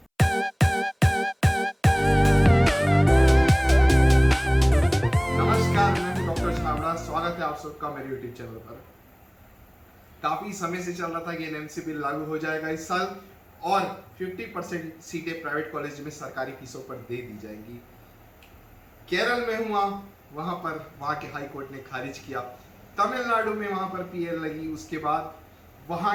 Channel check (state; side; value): identical; both; correlation 1.00